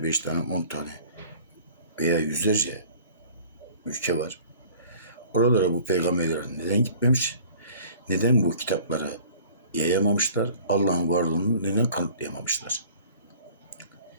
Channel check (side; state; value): both; inverted; correlation -0.48